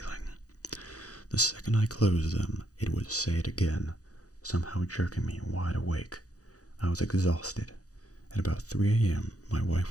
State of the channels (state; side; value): late; right; 0.67 ms